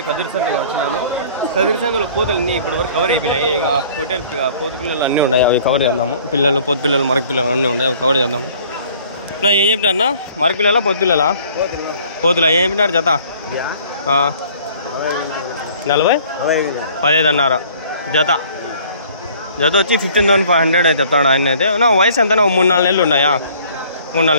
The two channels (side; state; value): both; inverted; correlation -0.54